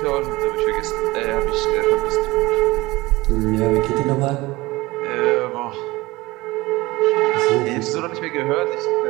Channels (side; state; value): left; quieter; 20.6 dB